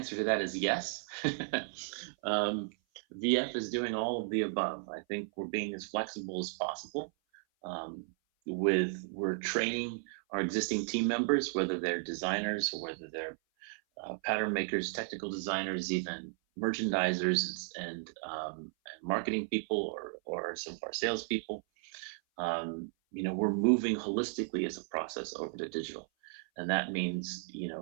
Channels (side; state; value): left; silent; 55 dB below the other